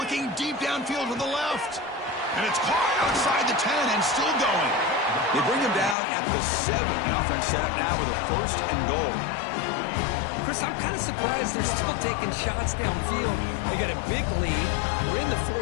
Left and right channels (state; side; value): drops out; right; at 6.0 s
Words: deep downfield to the left. And it's caught outside the 10 and still going. They bring him down at the 7. The offense set up now with a 1st and goal. Chris, I'm kind of surprised they're still taking shots downfield. They got a big lead. We're in the